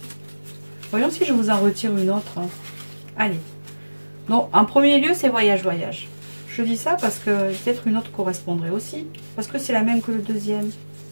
Voyons si je vous en retire une autre. Allez. Donc, en premier lieu, c'est voyage. Je dis ça parce que peut-être une autre correspondrait aussi. Parce que c'est la même que le deuxième.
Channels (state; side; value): inverted; both; correlation -1.00